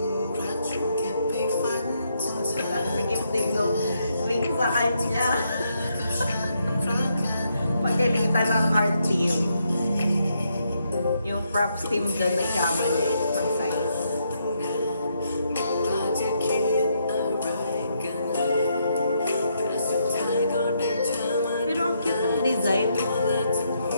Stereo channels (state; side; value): inverted; both; correlation -0.77